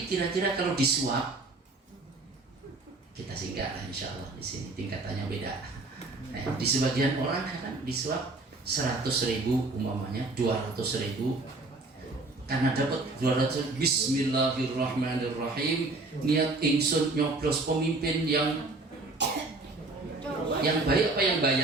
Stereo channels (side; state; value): left; quieter; 3.2 dB